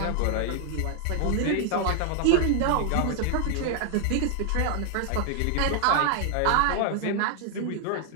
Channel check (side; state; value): both; different; correlation 0.00